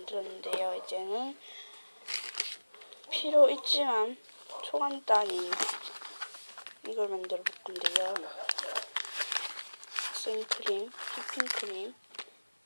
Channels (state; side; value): inverted; both; correlation -1.00